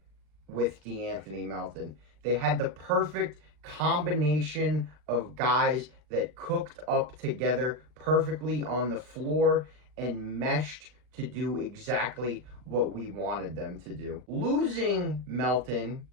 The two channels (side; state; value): left; late; 39 ms